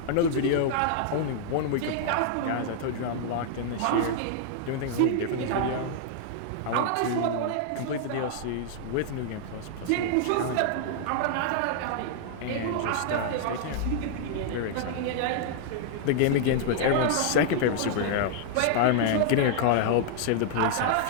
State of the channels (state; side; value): different; both; correlation -0.01